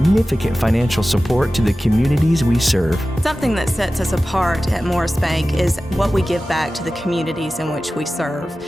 financial support to the communities we serve. Something that sets us apart at Morris Bank is what we give back to the communities in which we serve.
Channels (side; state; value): both; normal; correlation 0.95